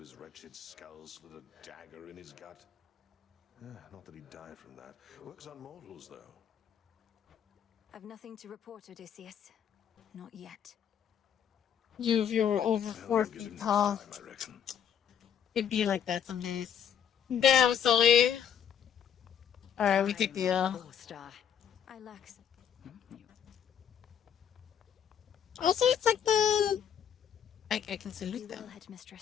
his wretched skull, slid a dagger in his gut. Not that he'd die from that. Works on mortals, though. I've nothing to report, Odysseus. Not yet. If you were over 4 Get him feet next tall, time, I reckon. it'd be like that some days. Damn, Sully. Alright, we take the Star. I lax. Also, it's like the... I can salute You them. will,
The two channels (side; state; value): right; quieter; 8.6 dB